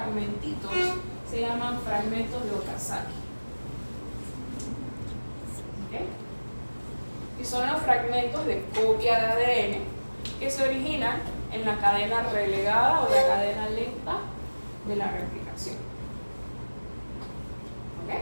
se llaman fragmentos de Okazaki. ¿Okay? Y son los fragmentos de copia de ADN que se originan en la cadena relegada o la cadena lenta de la replicación. ¿Ok?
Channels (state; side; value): inverted; both; correlation -1.00